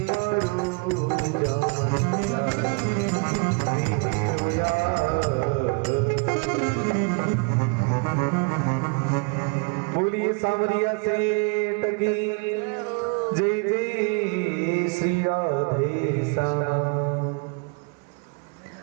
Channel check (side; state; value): left; quieter; 33.8 dB